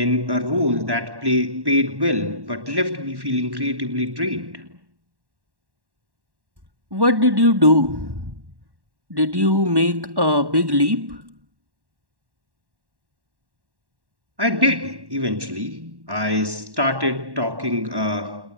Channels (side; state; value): left; late; 1.1 ms